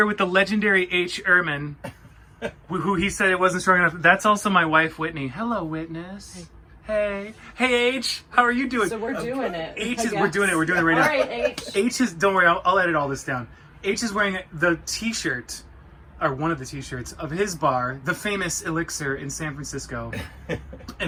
with the legendary Ehrmann, who he said it wasn't strong enough. That's also my wife, Whitney. Hello, Witness. Hey. Hey, H. How are you doing? So we're doing it. We're doing it right now. All right, H. H is, don't worry, I'll edit all this down. H is wearing the t-shirt, or one of the t-shirts, of his bar, the famous Elixir in San Francisco.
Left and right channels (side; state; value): both; identical; correlation 1.00